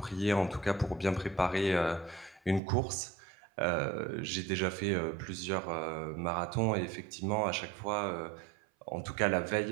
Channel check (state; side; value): drops out; left; at 2.6 s